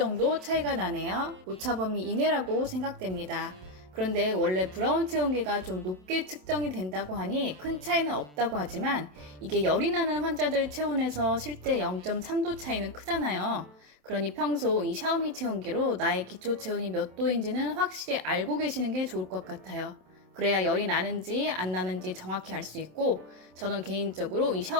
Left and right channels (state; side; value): late; left; 27 ms